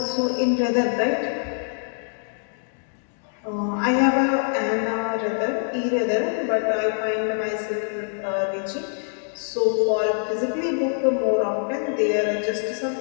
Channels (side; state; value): right; silent; digital silence